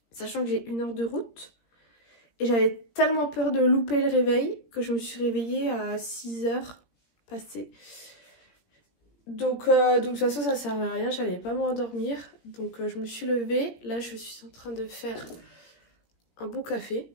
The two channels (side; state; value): right; late; 17 ms